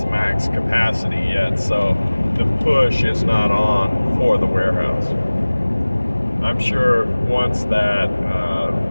max capacity yet, so the push is not on for the warehouse. I'm sure once that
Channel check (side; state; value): both; inverted; correlation -1.00